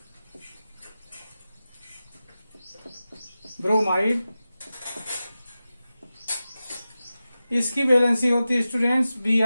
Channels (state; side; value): inverted; both; correlation -0.94